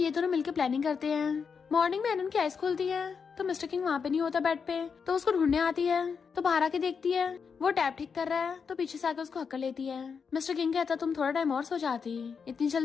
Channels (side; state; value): right; quieter; 6.0 dB